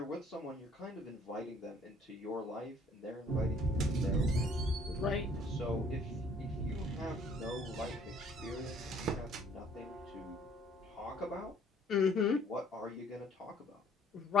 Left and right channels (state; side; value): normal; both; correlation 0.60